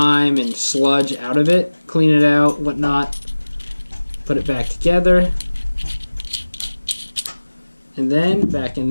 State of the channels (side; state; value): both; inverted; correlation -1.00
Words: and sludge out of it, clean it out, whatnot, put it back together, and then back in